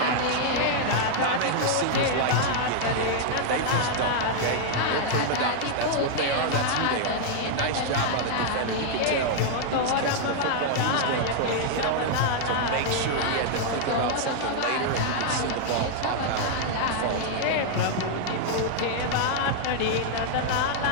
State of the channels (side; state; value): both; different; correlation -0.01